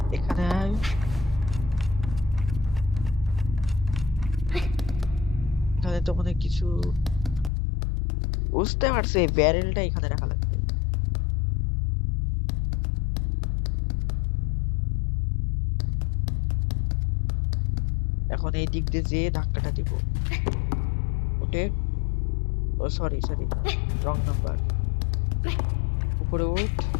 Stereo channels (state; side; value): drops out; right; at 7.5 s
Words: এখানে আয়। এখানে তো মনে হয় কিছু, বুঝতে পারছি ব্যারেলটা এখানে রাখা লাগবে। এখন এই দিক দিয়ে যে ধাক্কাটা দিব। ওঠে, ও সরি সরি, রং নাম্বার। উপরে উঠ,